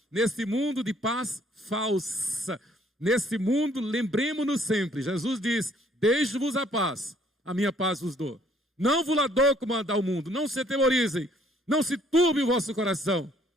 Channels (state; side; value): normal; both; correlation 0.62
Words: neste mundo de paz falsa, neste mundo, lembremos-nos sempre, Jesus diz, deixo-vos a paz, a minha paz vos dou. Não vos la dou como a dá o mundo, não se atemorizem, não se turbe o vosso coração,